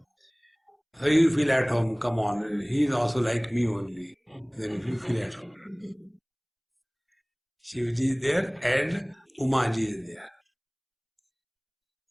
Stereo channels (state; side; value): identical; both; correlation 1.00